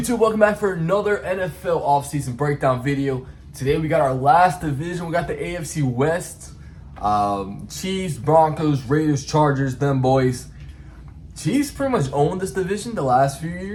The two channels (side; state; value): both; identical; correlation 1.00